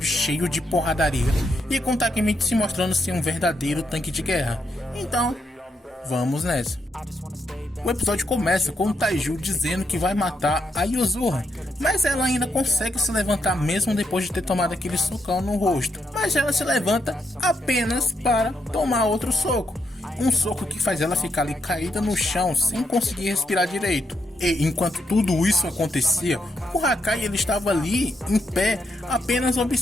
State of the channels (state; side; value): normal; both; correlation 0.79